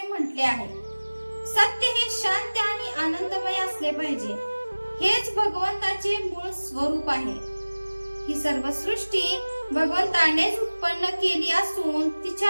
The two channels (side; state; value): both; inverted; correlation -1.00